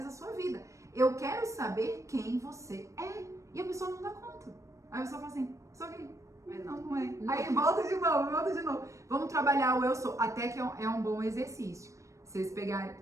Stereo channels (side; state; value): left; late; 0.15 ms